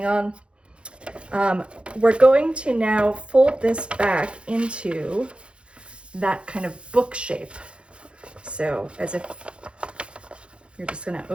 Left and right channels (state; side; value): late; left; 0.057 ms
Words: on. We're going to now fold this back into that kind of book shape. So as if you're just going to